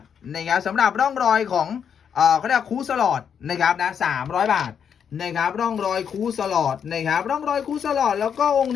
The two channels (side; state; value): right; quieter; 7.6 dB